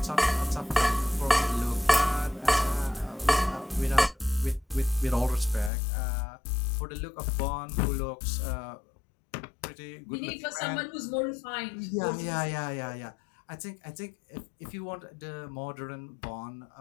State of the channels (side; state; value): right; drops out; at 5.7 s